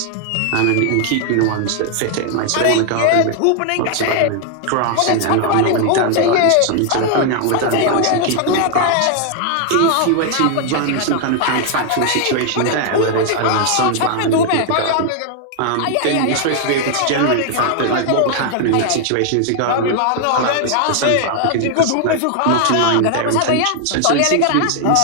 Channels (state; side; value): different; both; correlation 0.00